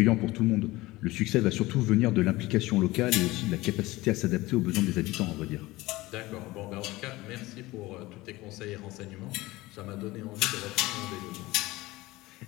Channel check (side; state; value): right; quieter; 19.6 dB